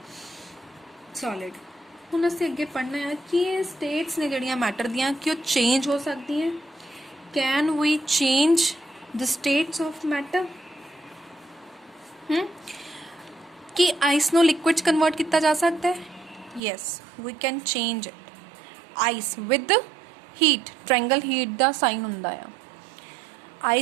सॉलिड। ਹੁਣ ਅਸੀਂ ਅੱਗੇ ਪੜ੍ਹਨਾ ਹੈ ਕਿ ਇਹ ਸਟੇਟਸ ਨੇ ਜਿਹੜੀਆਂ ਮੈਟਰ ਦੀਆਂ ਕਿ ਉਹ ਚੇਂਜ ਹੋ ਸਕਦੀਆਂ। Can we change the states of matter? ਕਿ ਆਈਸ ਨੂੰ ਲਿਕੁਇਡ 'ਚ ਕਨਵਰਟ ਕੀਤਾ ਜਾ ਸਕਦਾ ਹੈ? Yes, we can change it. Ice with heat, triangle heat ਦਾ ਸਾਈਨ ਹੁੰਦਾ ਆ।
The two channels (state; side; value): drops out; left; at 16.6 s